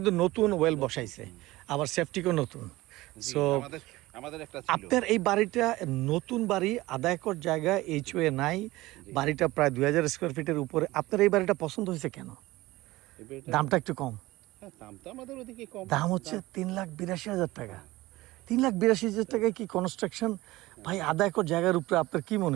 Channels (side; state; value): left; quieter; 18.9 dB